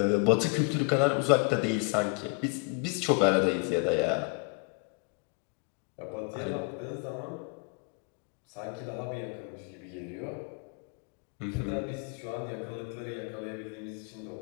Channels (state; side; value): quieter; right; 31.9 dB